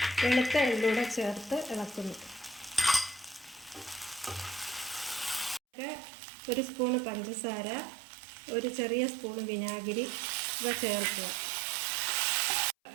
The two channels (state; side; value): drops out; left; at 5.6 s